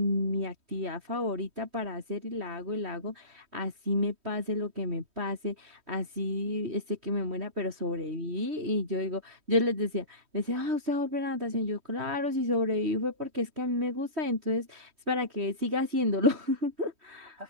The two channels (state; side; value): late; left; 3.1 ms